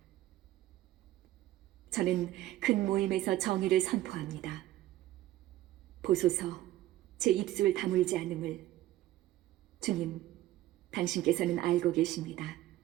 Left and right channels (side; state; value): left; quieter; 15.0 dB